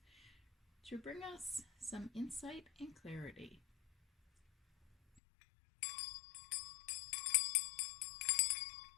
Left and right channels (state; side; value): drops out; right; at 5.2 s